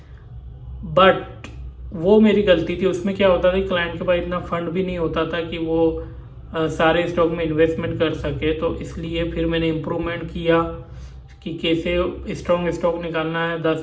बट वो मेरी गलती थी। उसमें क्या होता था कि क्लाइंट के पास इतना फंड भी नहीं होता था कि वो सारे स्टॉक में इन्वेस्टमेंट कर सके, तो इसलिए फिर मैंने इम्प्रूवमेंट किया कि कैसे स्ट्रॉन्ग स्टॉक निकालना है। 10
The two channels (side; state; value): both; identical; correlation 1.00